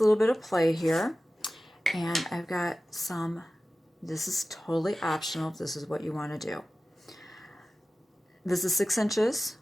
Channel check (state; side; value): normal; both; correlation 0.95